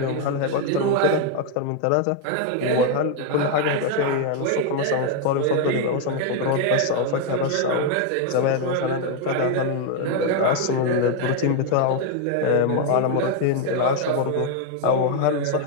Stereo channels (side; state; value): both; different; correlation 0.01